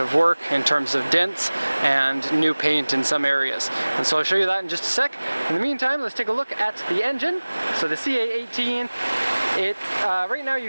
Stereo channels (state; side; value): inverted; both; correlation -1.00